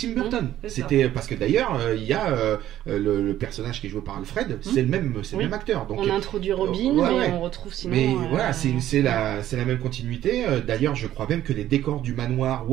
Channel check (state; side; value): quieter; left; 12.7 dB